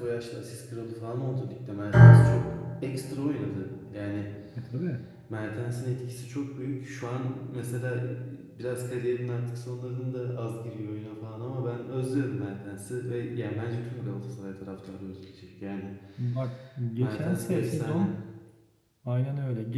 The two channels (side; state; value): both; identical; correlation 1.00